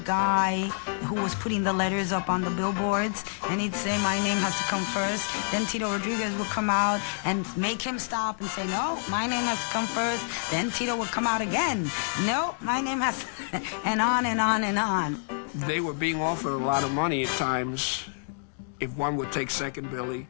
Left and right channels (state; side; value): silent; right; digital silence